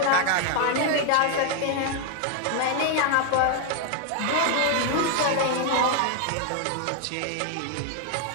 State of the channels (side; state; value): both; different; correlation 0.01